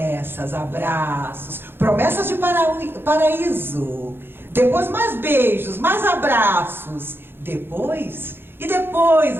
abraços, promessas de paraíso, depois mais beijos, mais abraços, depois, e depois,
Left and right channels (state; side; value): late; left; 0.10 ms